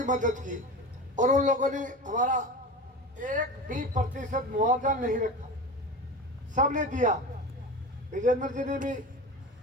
मदद की, और उन लोगों ने हमारा 1% मुआवजा नहीं रखा, सबने दिया। विजेंद्र जी ने भी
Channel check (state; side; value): normal; both; correlation 0.29